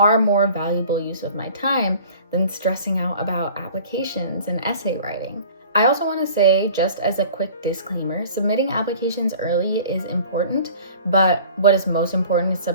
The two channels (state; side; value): inverted; both; correlation -0.47